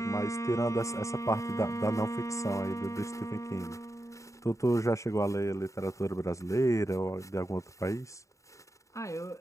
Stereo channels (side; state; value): right; late; 0.15 ms